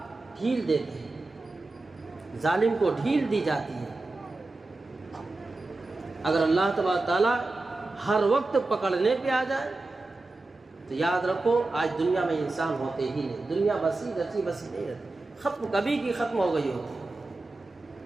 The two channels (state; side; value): quieter; left; 3.1 dB